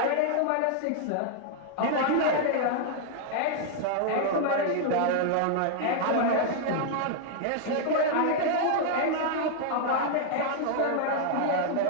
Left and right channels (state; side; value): different; both; correlation -0.01